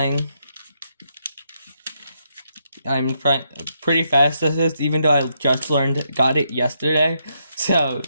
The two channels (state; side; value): inverted; both; correlation -0.78